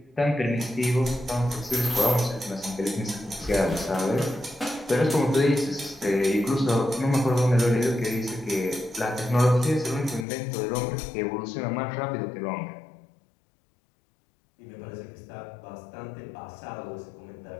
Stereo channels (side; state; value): right; drops out; at 10.2 s